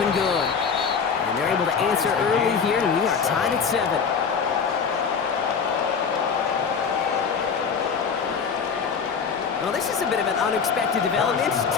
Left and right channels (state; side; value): quieter; right; 6.1 dB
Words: and good. And they're able to answer early here, and we are tied at 7. Well, this is a bit of an unexpected development.